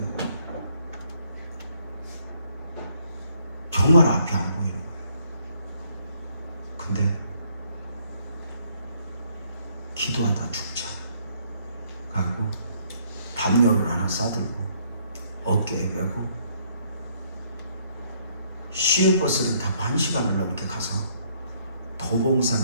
정말 앞이 안 보이는 거예요. 근데 기도하다 죽자 하고 담요를 하나 싸들고 어깨에 메고 시외버스를 타고 1시간을 넘게 가서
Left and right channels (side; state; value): both; inverted; correlation -0.67